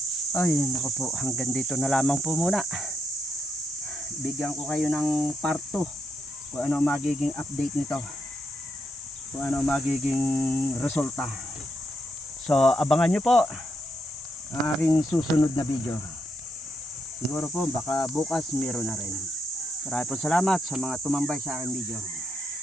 Ay, naku po, hanggang dito na lamang po muna. Bigyan ko kayo ng part 2 kung ano magiging update nito, kung ano magiging resulta. So abangan nyo po ang aking susunod na video. Siguro po baka bukas meron na rin. Maraming po salamat sa mga tumambay sa aking video.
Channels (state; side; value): normal; both; correlation 0.78